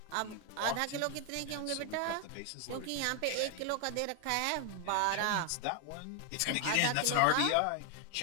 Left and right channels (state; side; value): different; both; correlation 0.00